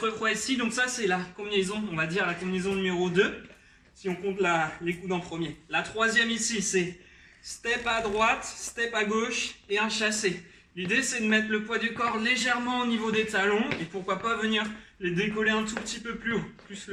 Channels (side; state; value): both; identical; correlation 1.00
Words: fois ici. Donc ça, c'est la combinaison, on va dire la combinaison numéro 2. Si on compte les coudes en premier. La troisième ici, c'est step à droite, step à gauche et un chassé. L'idée, c'est de mettre le poids du corps légèrement au niveau des talons et pourquoi pas venir les décoller un tout petit peu plus haut, plus